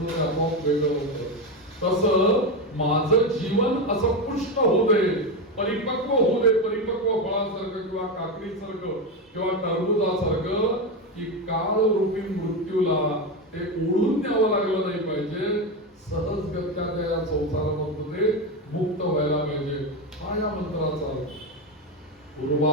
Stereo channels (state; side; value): normal; both; correlation 0.13